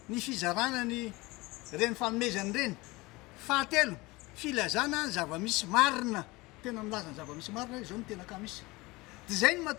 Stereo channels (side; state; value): right; quieter; 22.3 dB